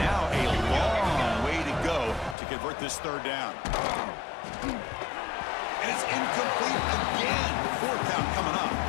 a long way to go to convert this third down. And it's incomplete again. Fourth down coming up.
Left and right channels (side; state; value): right; drops out; at 2.4 s